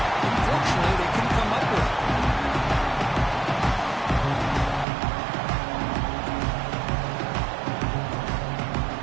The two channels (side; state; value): left; drops out; at 4.9 s